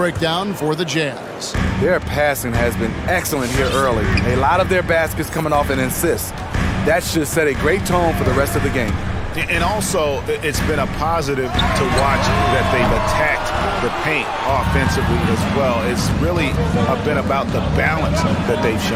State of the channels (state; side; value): identical; both; correlation 1.00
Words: for the Jazz. Their passing has been excellent here early. A lot of their baskets coming off an assist. That should set a great tone for the rest of the game. And also, it's been a positive to watch that they've attacked the paint offensively as well. It's really been about the balance that they've